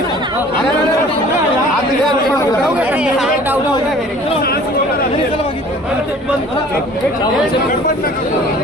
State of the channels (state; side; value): normal; both; correlation 0.49